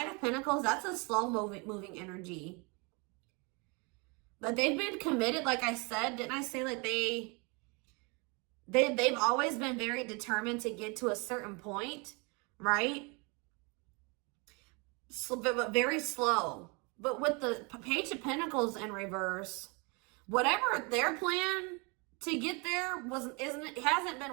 of Pentacles, that's a slow moving energy. But they've been committed, like I said. Didn't I say like they've always been very determined to get to a certain point, right? So, but very slow. But with the Page of Pentacles in reverse, whatever their plan to get there hasn't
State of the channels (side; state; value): left; quieter; 30.5 dB